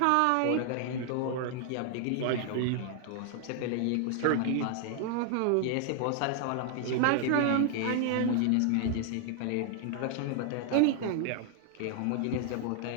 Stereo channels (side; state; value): both; different; correlation 0.00